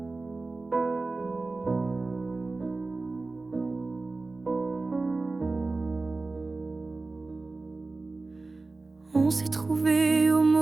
On s'est trouvé au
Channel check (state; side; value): quieter; left; 3.5 dB